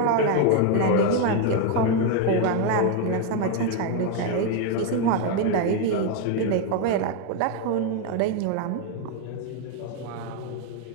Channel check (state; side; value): different; both; correlation 0.01